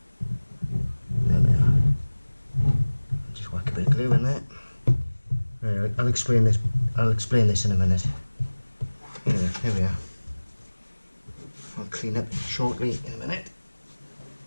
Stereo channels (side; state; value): both; inverted; correlation -1.00